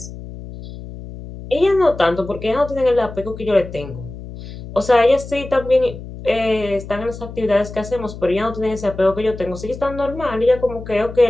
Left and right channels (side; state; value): left; noise; hum, 12 dB below the sound